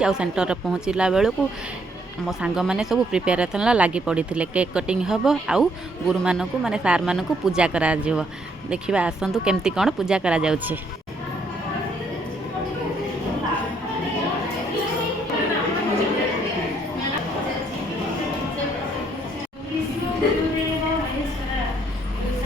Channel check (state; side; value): normal; both; correlation 0.69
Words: सेन्टर में पहुँचला बेलू मो सांग मैंने सब प्रिपेरेसन लगी पड़ी थे। केक कटिंग हम आउ गुरु मानक माने सार मानक पूजा करा देखा आसतु केमती कौन पूजा करा जाउछे।